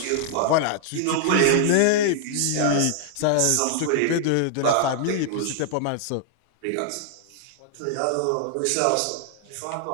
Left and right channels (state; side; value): different; both; correlation -0.01